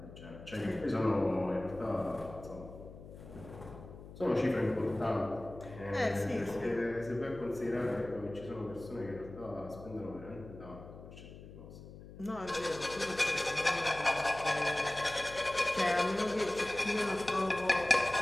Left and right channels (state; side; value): noise; left; hum, 15 dB below the sound